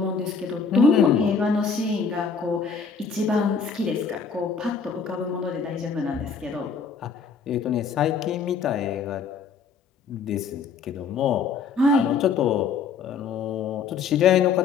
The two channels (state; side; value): quieter; right; 5.6 dB